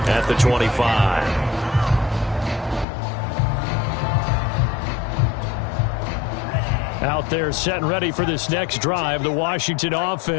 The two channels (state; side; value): drops out; right; at 2.9 s